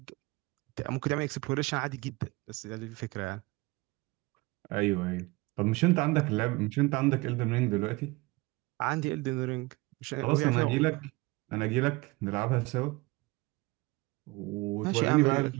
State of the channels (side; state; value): left; quieter; 23.3 dB